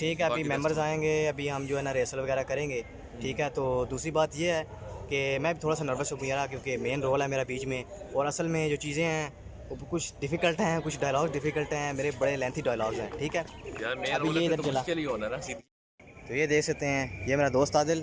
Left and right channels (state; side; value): identical; both; correlation 1.00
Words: है, अभी बाकी रेस्ट मेंबर्स हो। आएंगे, अभी हम जो है ना रेसल वगैरह करेंगे, ठीक है। तो दूसरी बात ये है कि मैं भी थोड़ा सा नर्वस हूँ यार, क्योंकि मेन रोल है मेरा बीच में। और असल में जो चीज़ें हैं वो कुछ डिफ़िकल्ट हैं, कुछ डायलॉग डिफ़िकल्ट हैं, मेरे बड़े लेंथी डायलॉग्स हैं, ठीक है। यार मेन अभी रोल है ये फिर इधर तो चला। मुश्किल ही होना ना सीधी। तो ये देख सकते हैं, ये मेरा दोस्त